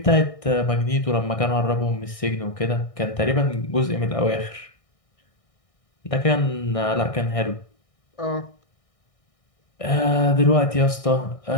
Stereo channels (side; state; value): right; late; 1.6 ms